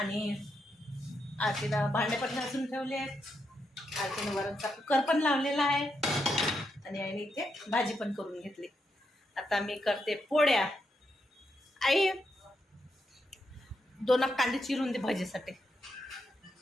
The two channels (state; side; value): normal; both; correlation 0.82